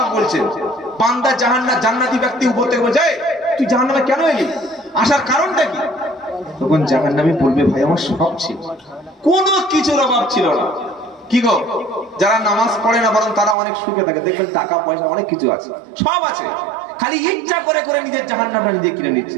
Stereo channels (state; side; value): drops out; left; at 13.6 s